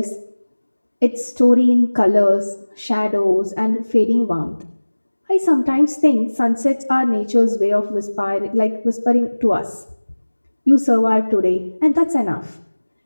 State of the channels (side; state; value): both; inverted; correlation -1.00